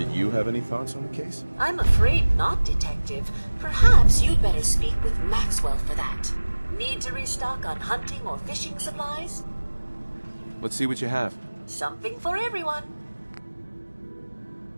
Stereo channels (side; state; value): both; inverted; correlation -1.00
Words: you have any thoughts on the case? I'm afraid not, Detective. Perhaps you'd better speak with Maxwell for that. Need to restock on hunting or fishing supplies? Let's see what you have. Something for everyone.